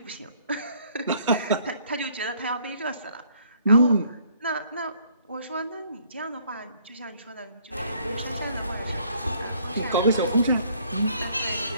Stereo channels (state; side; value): inverted; both; correlation -0.63